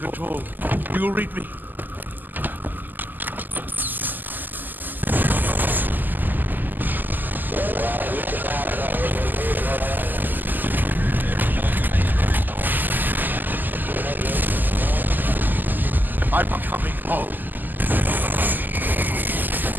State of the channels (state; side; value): late; left; 0.087 ms